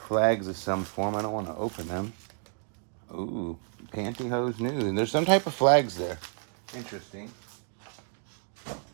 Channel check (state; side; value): silent; left; 58 dB below the other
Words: Flags of some form. I don't want to open them. Ooh, pantyhose news. And there's some type of flags there. Interesting.